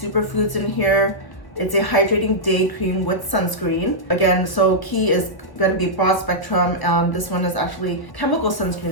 in here. It's a hydrating day cream with sunscreen. Again, so key is going to be broad spectrum. This one is actually chemical sunscreen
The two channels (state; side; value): late; right; 1.2 ms